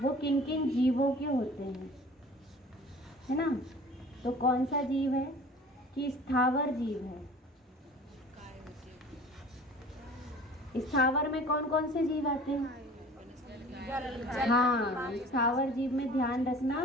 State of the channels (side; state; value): both; normal; correlation 0.45